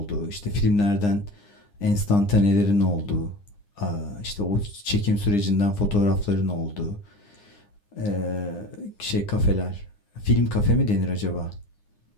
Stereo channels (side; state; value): right; late; 9.8 ms